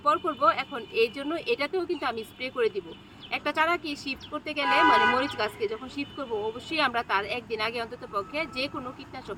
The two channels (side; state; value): both; identical; correlation 1.00